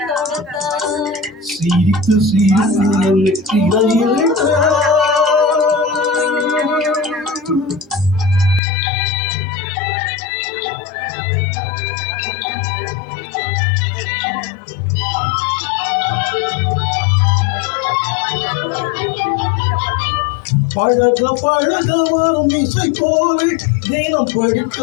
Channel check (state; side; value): drops out; right; at 8.6 s